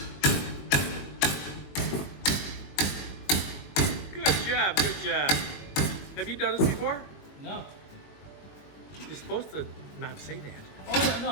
Good job, good job. Have you done this before? No. You're supposed to not say that. Oh yeah,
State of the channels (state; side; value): late; right; 21 ms